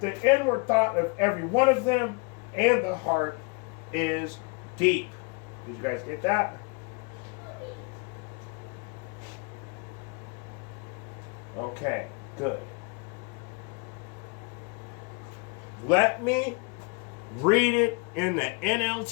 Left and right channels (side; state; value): right; quieter; 31.9 dB